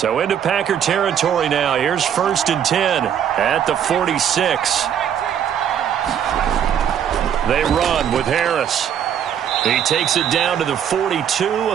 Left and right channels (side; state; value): left; quieter; 9.0 dB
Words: into Packer territory now. Here's 1st and 10 at the 46. They run with Harris. He takes it down to the 42, a